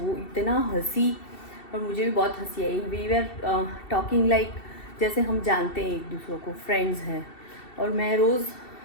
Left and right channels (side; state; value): right; late; 2.7 ms